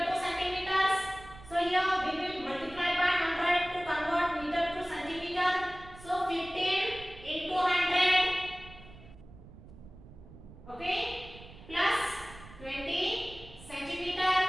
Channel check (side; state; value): right; noise; rumble, 18 dB below the sound